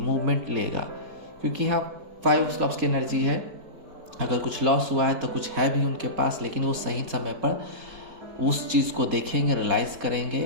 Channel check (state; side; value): late; left; 4.6 ms